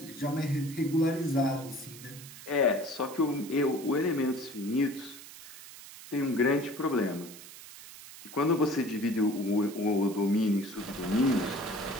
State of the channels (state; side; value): noise; right; hiss, 16 dB below the sound